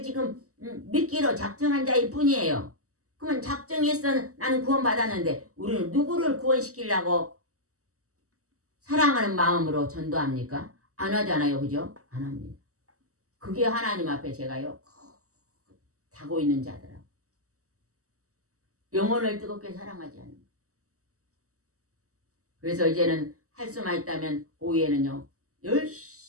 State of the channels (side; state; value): left; late; 0.65 ms